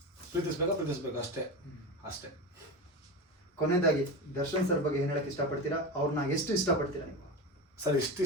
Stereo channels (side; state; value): both; normal; correlation 0.23